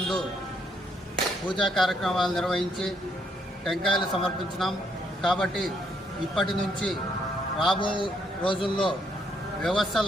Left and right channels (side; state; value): both; normal; correlation 0.72